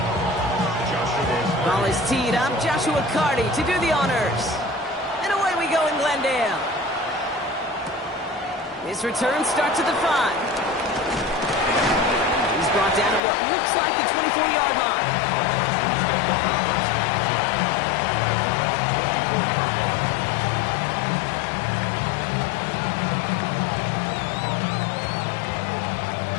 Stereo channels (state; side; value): drops out; right; at 13.2 s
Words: Ball is teed up. Joshua Carty to do the honors. And away we go in Glendale. This return starts at the 5. He's brought down at what looks like the 24-yard line.